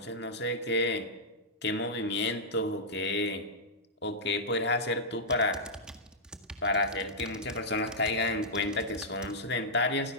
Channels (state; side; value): normal; both; correlation -0.10